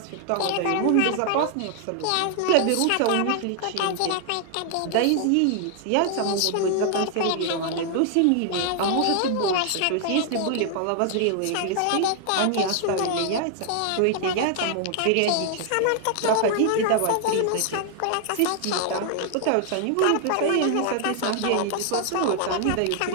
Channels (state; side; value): different; both; correlation 0.00